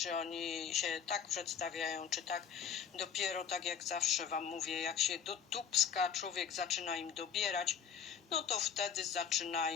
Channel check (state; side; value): quieter; right; 7.7 dB